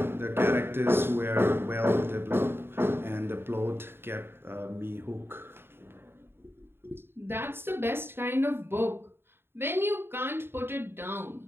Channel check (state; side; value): late; left; 0.11 ms